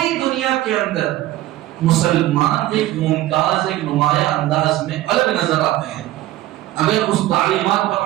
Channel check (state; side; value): quieter; left; 15.3 dB